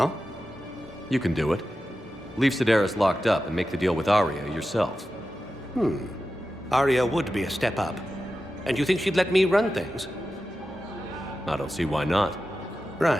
You can do it. Leave Sedaris locked up and make the deal with Arya yourself. Arya would be a step up. And you think she'd let me run things? I don't see why not.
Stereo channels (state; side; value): normal; both; correlation 0.92